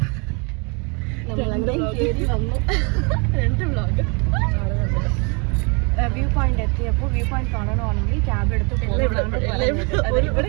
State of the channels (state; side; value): quieter; left; 32.8 dB